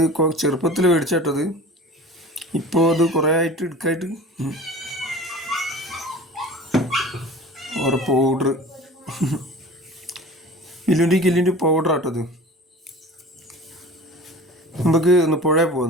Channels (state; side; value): normal; both; correlation 0.40